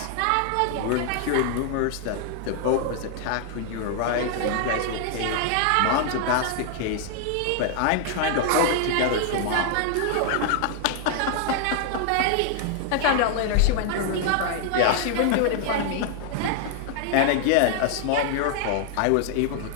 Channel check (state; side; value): different; both; correlation 0.00